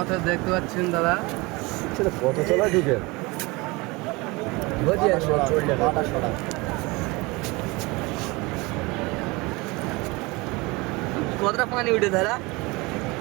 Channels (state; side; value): quieter; left; 24.3 dB